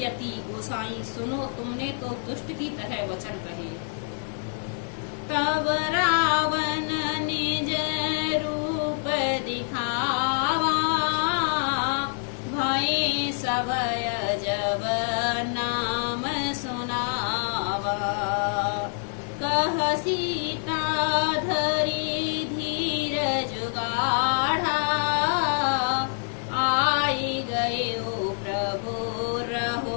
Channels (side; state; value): right; silent; 57 dB below the other